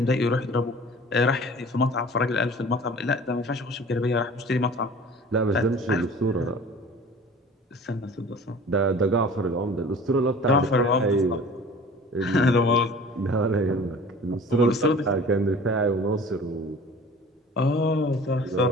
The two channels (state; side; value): normal; both; correlation 0.44